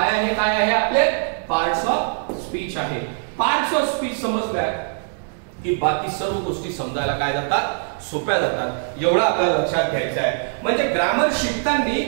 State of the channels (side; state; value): left; silent; digital silence